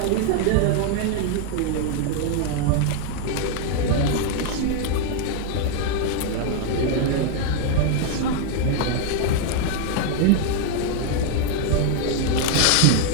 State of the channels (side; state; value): both; different; correlation 0.00